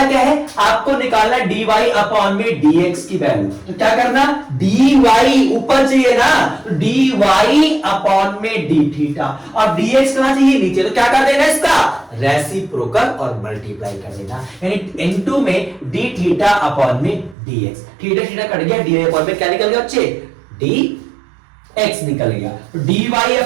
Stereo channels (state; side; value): drops out; left; at 17.4 s